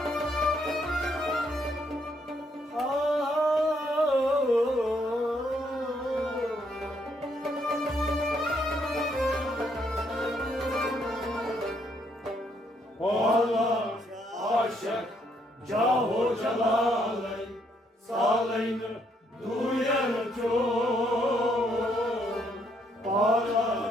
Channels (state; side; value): normal; both; correlation 0.72